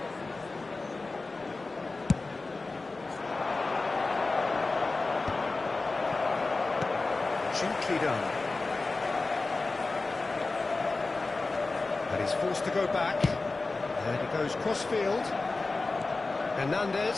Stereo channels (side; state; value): right; quieter; 3.5 dB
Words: Done. And he's forced to go back. And he goes cross-field.